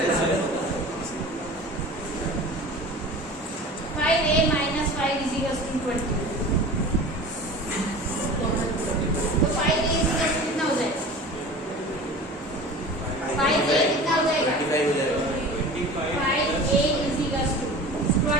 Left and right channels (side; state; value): both; normal; correlation 0.38